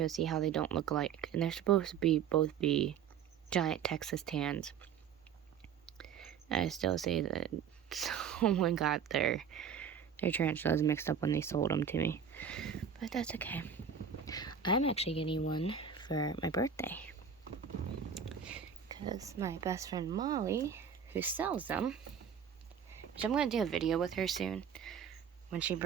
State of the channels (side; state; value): left; quieter; 7.5 dB